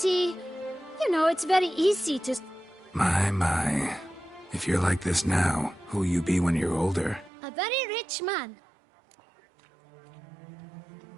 You know, it's very easy to... My. If you're like this now, who'll you be when you're older? A very rich man.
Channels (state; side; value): drops out; left; at 7.3 s